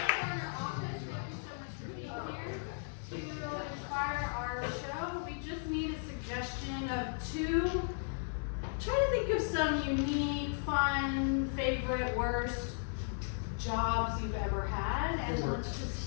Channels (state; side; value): silent; right; digital silence